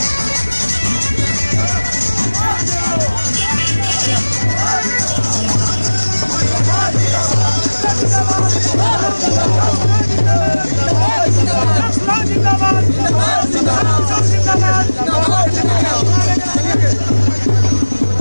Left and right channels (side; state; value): both; inverted; correlation -1.00